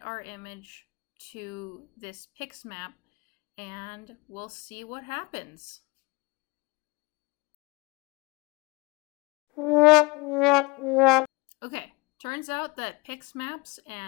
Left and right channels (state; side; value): quieter; right; 26.0 dB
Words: our image to this PyQt5 and we'll see what happens. Okay, turns out that PyQt5